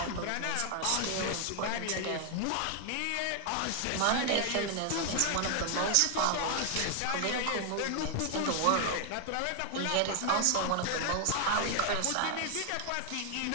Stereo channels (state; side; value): different; both; correlation 0.00